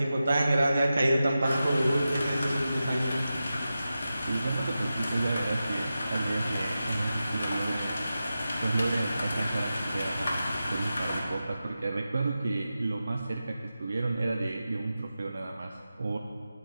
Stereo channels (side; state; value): both; inverted; correlation -0.92